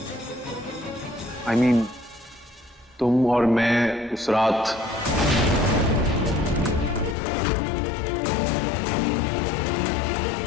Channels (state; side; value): drops out; right; at 7.2 s